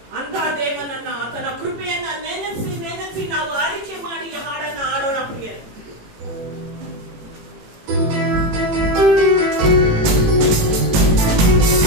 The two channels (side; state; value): left; late; 18 ms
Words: ಅಂತ ದೇವನನ್ನ, ಆತನ ಕೃಪೆಯನ್ನ ನೆನೆಸಿ ನೆನೆಸಿ ನಾವು ಆರಿಕೆ ಮಾಡಿ ಹಾಡನ್ನ ಆಡೋಣ ಪ್ರಿಯರೇ.